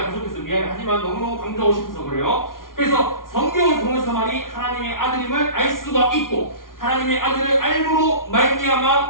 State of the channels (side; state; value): right; late; 0.91 ms